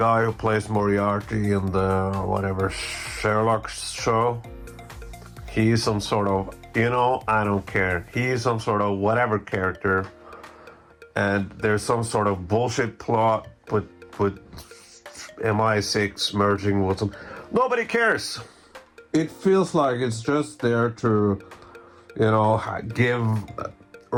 who plays Moriarty in the whatever Sherlock show, he's some sort of, I don't care. He's some sort of whatever character, and there's some sort of bullshit plot with MI6 merging with them. Nobody cares. It feels like it's just there to, give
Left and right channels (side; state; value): both; identical; correlation 1.00